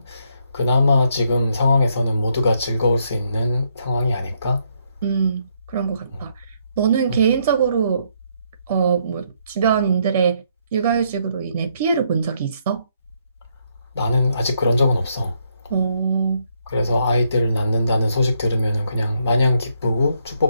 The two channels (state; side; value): inverted; both; correlation -0.73